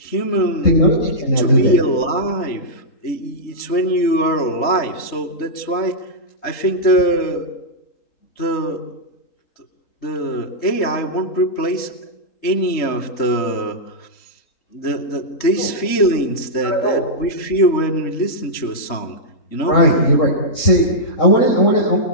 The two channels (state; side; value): late; right; 3.8 ms